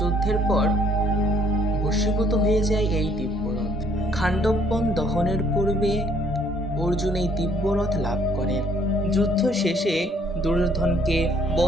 যুদ্ধের পর ভস্মীভূত হয়ে যায় এই দিব্যরথ। খাণ্ডববন দহনের পূর্বে অর্জুন এই দিব্যরথ লাভ করেন। যুদ্ধ শেষে দুর্যোধনকে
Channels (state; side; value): normal; both; correlation 0.64